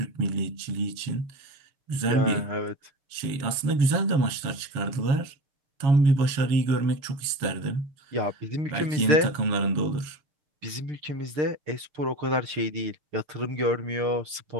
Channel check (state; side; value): late; left; 7.2 ms